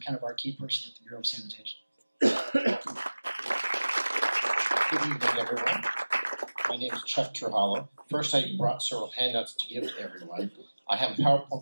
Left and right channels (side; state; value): both; inverted; correlation -1.00